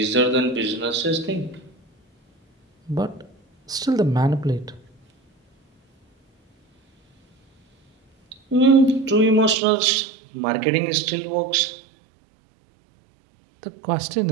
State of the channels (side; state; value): left; drops out; at 9.6 s